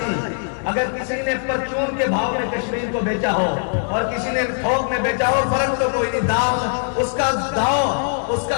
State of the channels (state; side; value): silent; right; 65 dB below the other